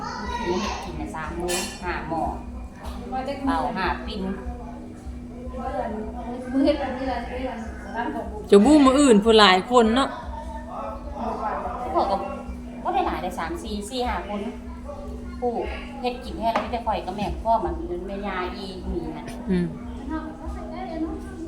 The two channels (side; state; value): both; identical; correlation 1.00